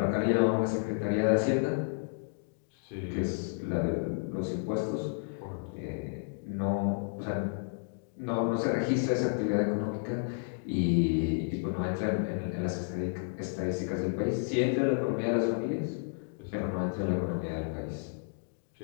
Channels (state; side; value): silent; right; digital silence